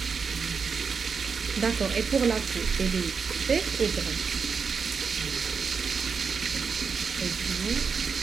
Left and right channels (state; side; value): quieter; left; 5.7 dB